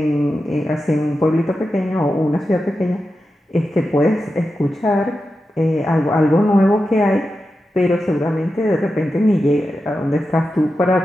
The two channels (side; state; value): both; normal; correlation 0.90